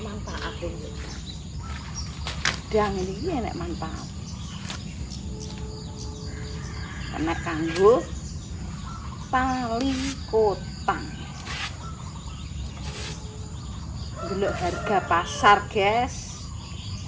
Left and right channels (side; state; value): both; identical; correlation 1.00